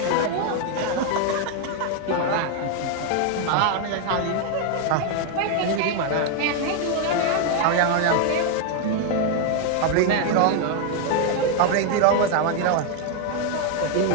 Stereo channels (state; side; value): different; both; correlation 0.01